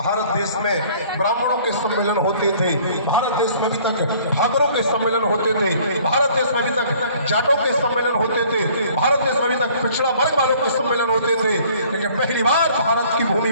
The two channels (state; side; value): inverted; both; correlation -0.55